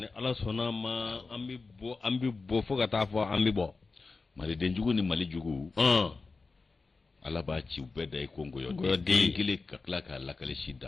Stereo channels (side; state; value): right; quieter; 4.0 dB